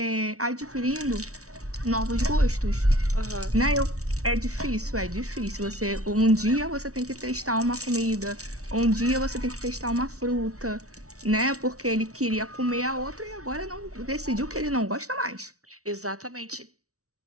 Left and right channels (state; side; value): late; left; 0.65 ms